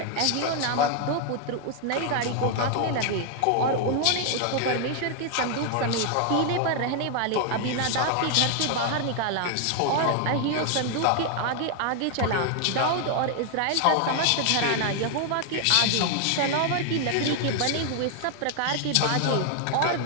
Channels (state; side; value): different; both; correlation 0.00